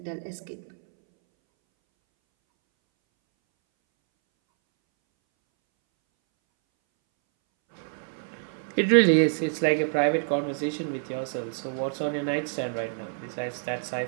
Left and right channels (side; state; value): left; silent; 60 dB below the other